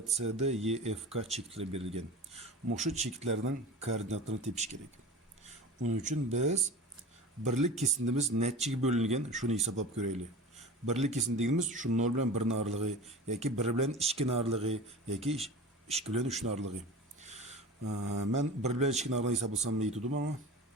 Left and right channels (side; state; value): both; normal; correlation 0.35